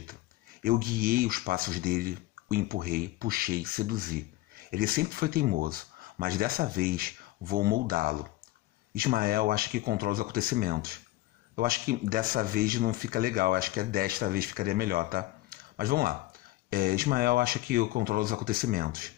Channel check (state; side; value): quieter; right; 17.4 dB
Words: Eu guiei os passos dele, o empurrei, puxei, seduzi. Ele sempre foi teimoso, mas dessa vez vou moldá-lo. Ismael acha que controla os acontecimentos. Eu acho que dessa vez não fica legal, acho que desta vez ficaria melhor, tá? Mas vamos lá. Ismael acha que eu controlo os acontecimentos,